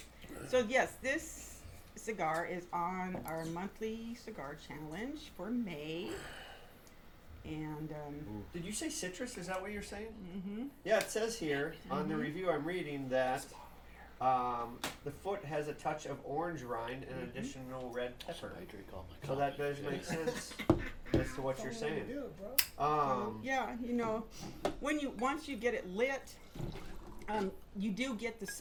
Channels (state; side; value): identical; both; correlation 1.00